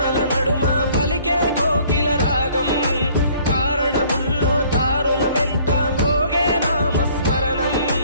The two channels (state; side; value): inverted; both; correlation -0.57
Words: నడుమ పలికే కోకిల రాగం, కారడవుల్లో దారుల వెంట మ్రోగే నామస్మరణం.